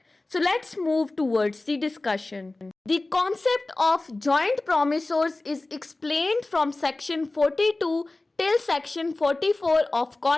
So let's move towards the discussion. The concept of joint promissors is explained from section 42 till section 44 of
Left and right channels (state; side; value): quieter; right; 3.0 dB